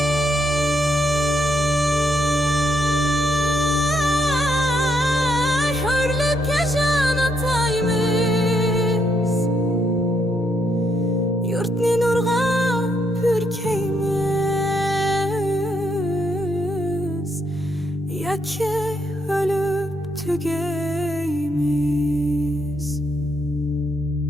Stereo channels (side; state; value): both; normal; correlation 0.75